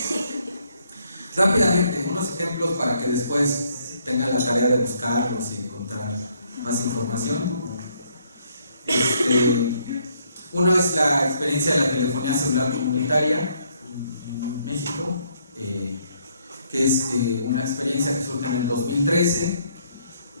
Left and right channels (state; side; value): inverted; both; correlation -0.69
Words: Rápidamente, unos ejemplos para que después tengan la tarea de buscarlos y encontrar más información. Uno es la experiencia de la telefonía celular comunitaria en México, que es una experiencia que surge en el 2013,